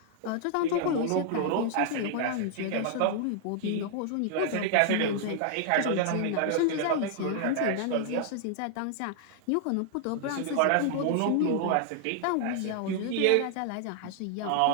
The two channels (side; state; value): both; different; correlation 0.00